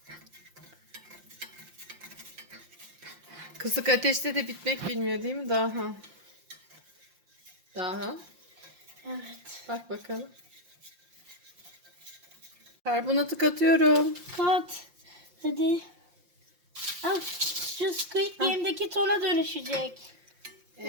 Kısık ateşte de bitmek bilmiyor değil mi daha? Daha. Evet. Bak bakalım. Karbonatı katıyorum. Kat. Hadi. Al. Şu Squid Game'deki tona dönüşecek.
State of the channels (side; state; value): left; late; 5.7 ms